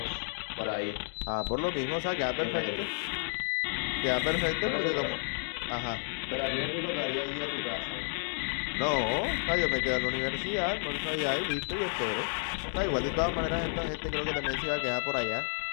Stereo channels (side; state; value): right; silent; digital silence